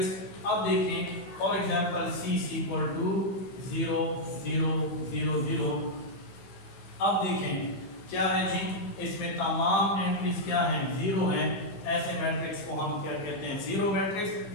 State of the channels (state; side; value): late; right; 15 ms